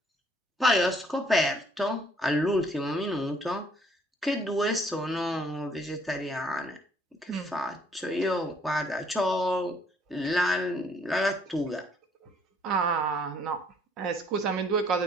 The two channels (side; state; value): both; normal; correlation 0.64